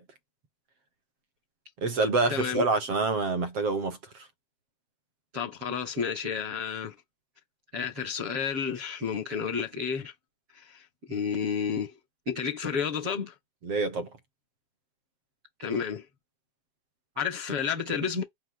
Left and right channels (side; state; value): left; late; 7.6 ms